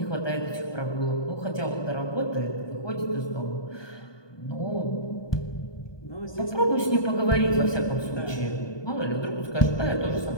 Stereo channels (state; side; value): late; right; 1.2 ms